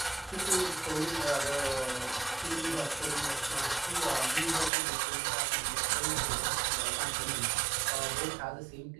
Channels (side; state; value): left; drops out; at 4.7 s